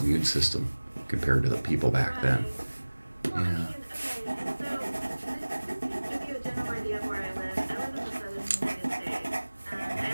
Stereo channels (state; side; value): inverted; both; correlation -1.00